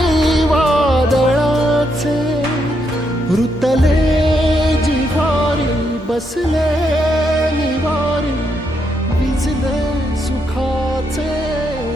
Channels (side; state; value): both; normal; correlation 0.78